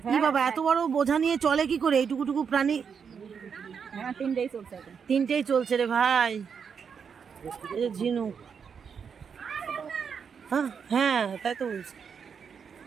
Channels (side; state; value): left; quieter; 6.6 dB